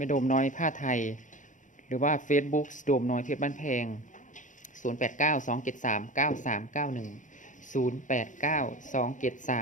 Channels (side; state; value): right; late; 0.37 ms